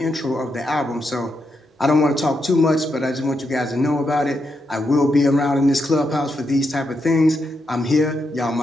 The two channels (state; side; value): normal; both; correlation 0.83